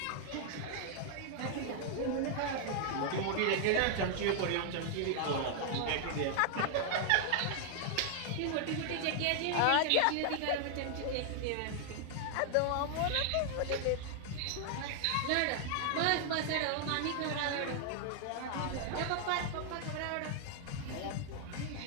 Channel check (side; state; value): both; different; correlation 0.00